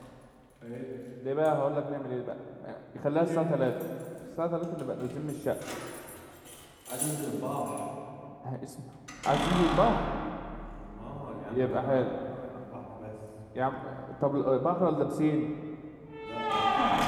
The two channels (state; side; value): identical; both; correlation 1.00